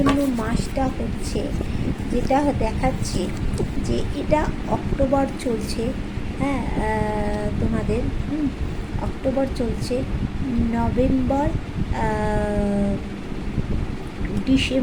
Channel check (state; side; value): identical; both; correlation 1.00